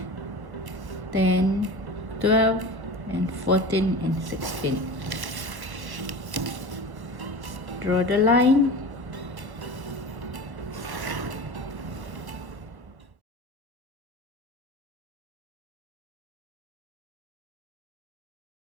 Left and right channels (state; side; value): late; left; 1.1 ms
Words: 10, 12, and 14, and 16. Draw the line.